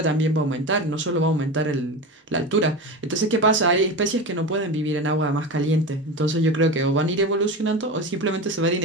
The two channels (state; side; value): normal; both; correlation 0.25